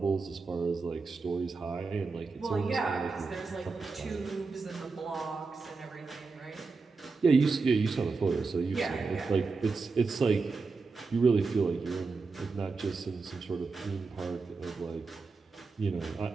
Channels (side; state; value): left; quieter; 4.3 dB